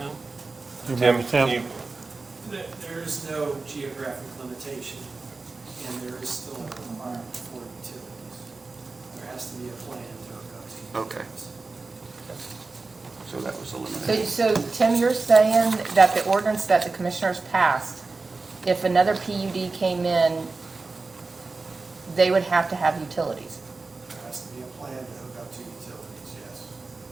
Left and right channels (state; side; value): quieter; left; 3.8 dB